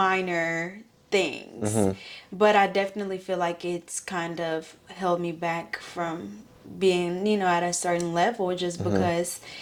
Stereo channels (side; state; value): both; identical; correlation 1.00